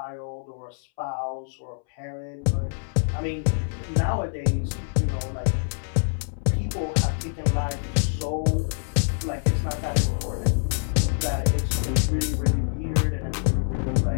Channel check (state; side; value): silent; right; 61 dB below the other